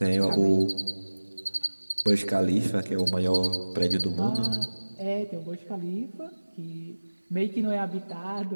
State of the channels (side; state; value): both; inverted; correlation -1.00